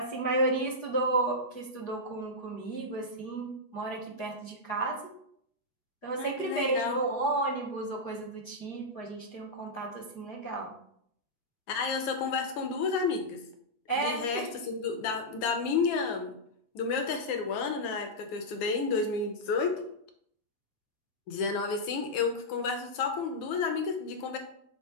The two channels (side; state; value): right; late; 8.4 ms